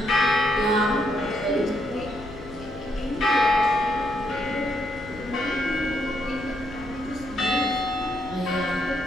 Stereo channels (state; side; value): noise; left; rumble, 16 dB below the sound